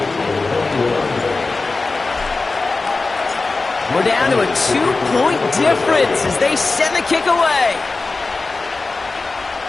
We're down to a 2-point difference as they send the kick away.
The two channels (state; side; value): quieter; right; 3.7 dB